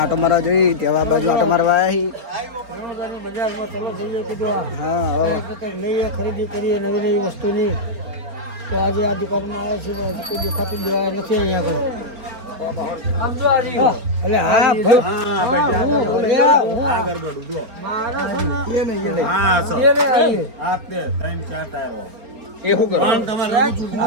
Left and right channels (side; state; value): left; late; 4.3 ms